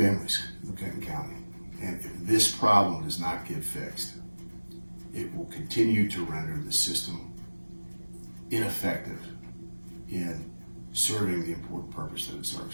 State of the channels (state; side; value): inverted; both; correlation -1.00